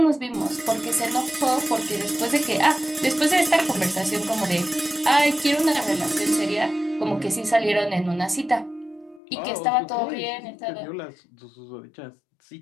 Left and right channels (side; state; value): right; drops out; at 9.2 s